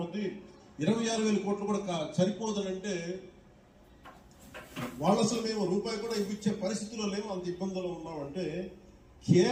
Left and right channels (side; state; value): both; identical; correlation 1.00